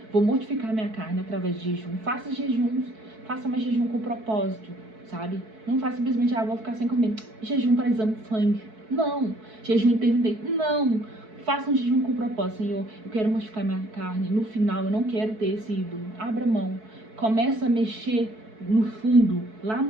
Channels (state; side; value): late; left; 4.6 ms